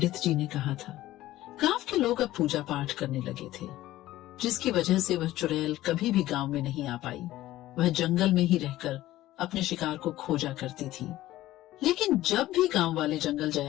जी ने कहा था। गांव के लोग अब पूजा पाठ करने लगे थे, जिसकी वजह से वह चुड़ैल कभी भी गांव में नहीं आ पाई। वह जंगल में ही रहकर अपने शिकार को खोजा करती थी। लेकिन जब भी गांव वाले जंगल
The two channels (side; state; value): right; quieter; 15.5 dB